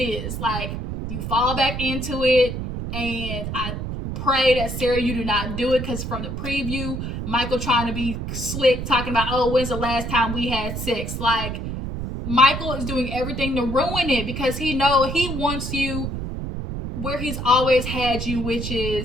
is. Like, you fall back into it, and I pray that, Sarah, you do not do it, because from the preview, Michael trying to be slick, talking about, oh, when's the last time we had sex? Like, Michael is doing everything to ruin it, because he wants you where he's always had you, which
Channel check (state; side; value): noise; right; rumble, 5 dB below the sound